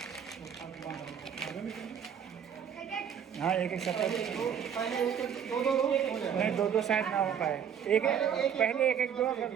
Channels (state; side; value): quieter; left; 8.2 dB